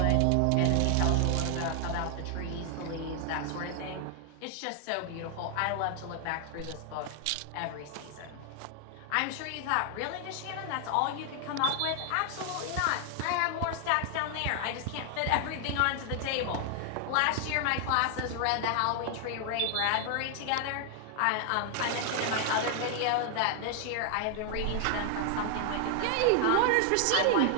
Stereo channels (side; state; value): both; different; correlation 0.00